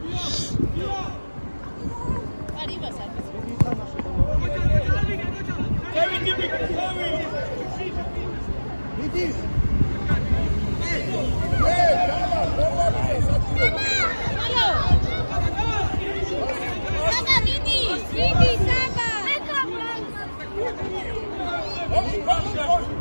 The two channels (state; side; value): inverted; both; correlation -1.00